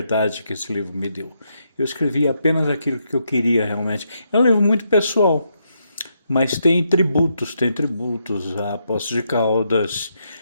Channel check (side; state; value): both; inverted; correlation -0.79